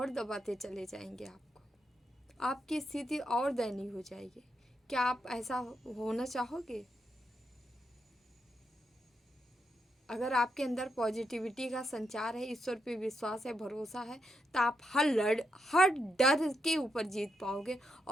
दबाते चले जाएंगे आपको, आपकी स्थिति और दयनीय हो जाएगी। क्या आप ऐसा होना चाहोगे? अगर आपके अंदर पॉजिटिविटी का संचार है, ईश्वर पे विश्वास है, भरोसा है, तो आप हर डर के ऊपर जीत पाओगे,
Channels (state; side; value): normal; both; correlation 0.82